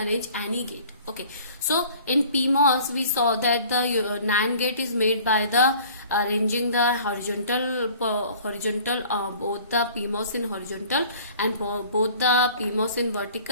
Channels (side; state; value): both; inverted; correlation -0.49